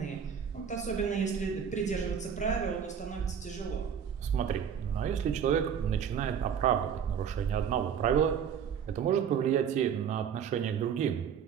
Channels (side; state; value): left; quieter; 7.8 dB